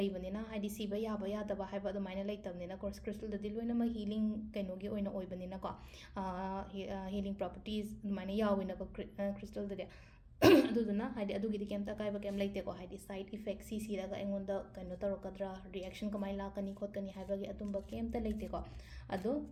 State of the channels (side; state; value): both; identical; correlation 1.00